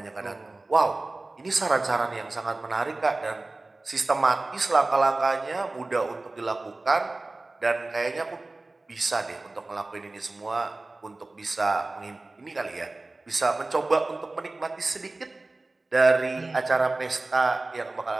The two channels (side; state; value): left; quieter; 3.1 dB